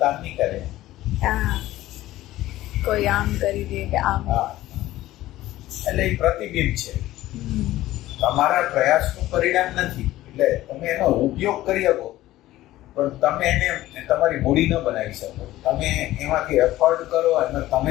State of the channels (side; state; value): right; quieter; 15.6 dB